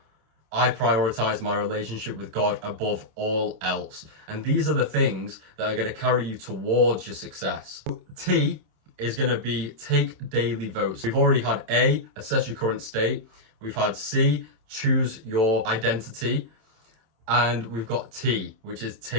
I prioritize my relationship with God above all else. And these are the things that are going to carry you towards your success. T is going to be take daily votes. We've already had A, assess your current state. We've had C, choose your identity. And we've got T, which is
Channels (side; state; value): left; late; 26 ms